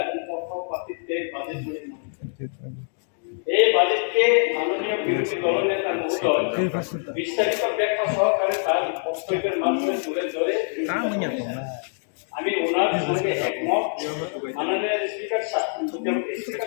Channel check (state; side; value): silent; right; 61 dB below the other